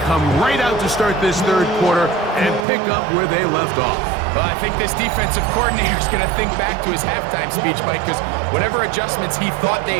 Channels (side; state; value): left; drops out; at 2.7 s